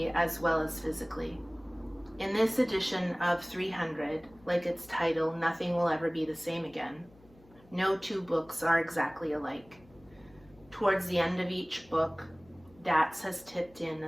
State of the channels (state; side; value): noise; left; hum, 27 dB below the sound